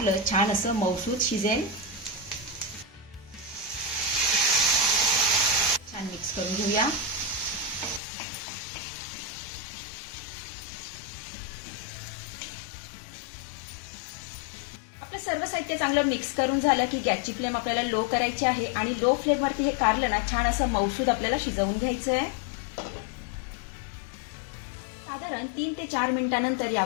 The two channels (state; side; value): drops out; right; at 8.0 s